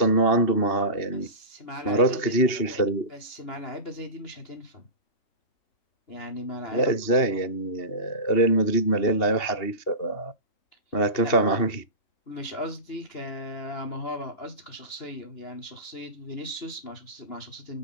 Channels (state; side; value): late; right; 2.9 ms